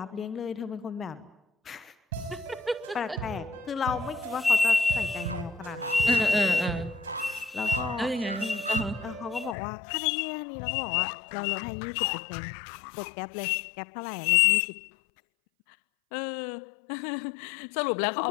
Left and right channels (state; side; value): drops out; right; at 9.6 s